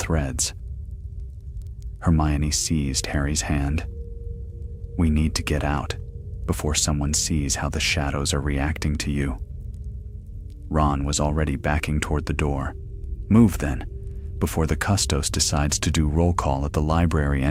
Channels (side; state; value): both; identical; correlation 1.00